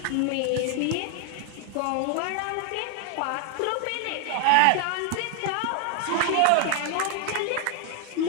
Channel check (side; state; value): both; different; correlation 0.00